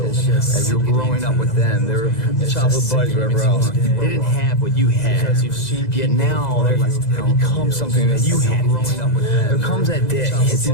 As you're growing up with them, they're childhood buddies, whatever else. They didn't have what you had. Yet now they become something that you had. There comes that day. It's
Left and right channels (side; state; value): right; late; 2.0 ms